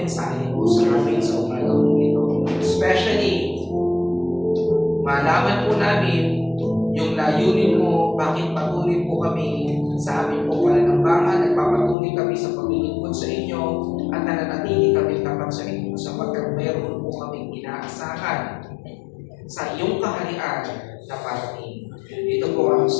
mo sa amin sa umaga po ito. Especially, malaman po namin yung layunin mo, bakit patuloy po kami sa aming pong pananambangan, nagpapatuloy kami sa paglilingkod sa inyo, at nananatili kami tapat sa inyo sapagkat meron po kaming inaasahan sa iyong kaharian na parating. Ito po ang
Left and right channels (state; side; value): drops out; right; at 12.0 s